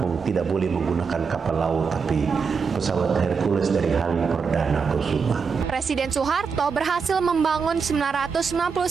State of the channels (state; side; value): quieter; left; 5.6 dB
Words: tidak boleh menggunakan kapal laut tapi pesawat Hercules dari Halim Perdana Kusuma. Presiden Soeharto berhasil membangun 999